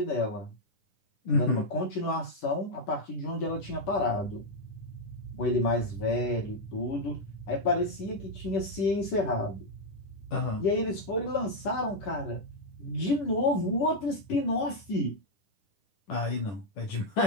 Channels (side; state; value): right; late; 10 ms